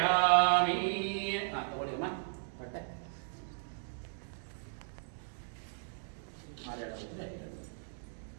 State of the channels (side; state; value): left; silent; digital silence